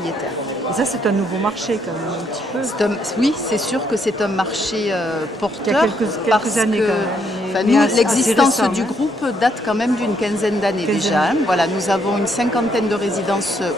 Et ça, c'est un nouveau marché quand même, un petit peu. Oui, c'est sûr que c'est un marché porteur. Il y a quelques années quand même. L'existence du groupe date quand même d'une quinzaine d'années déjà. Hein. Voilà, nous avons une cinquantaine de résidences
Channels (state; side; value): normal; both; correlation 0.73